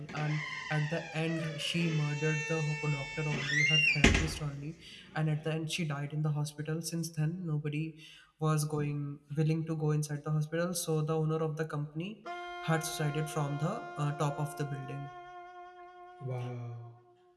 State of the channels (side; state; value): both; identical; correlation 1.00